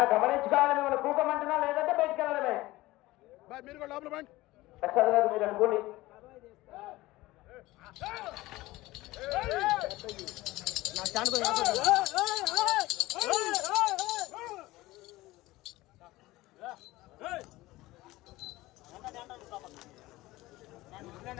గమనించుకోవాలి. మిమ్మల్ని కూకమంటున్నా లేదంటే బయటికి వెళ్ళడమే. ప్రసాద్ గారు మీరు అనుకోండి.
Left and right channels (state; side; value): quieter; right; 18.6 dB